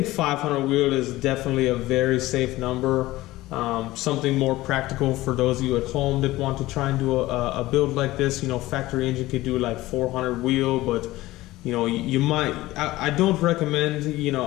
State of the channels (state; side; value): quieter; right; 17.7 dB